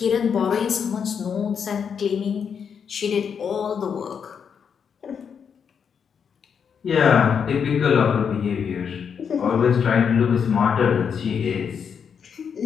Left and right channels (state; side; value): quieter; right; 7.0 dB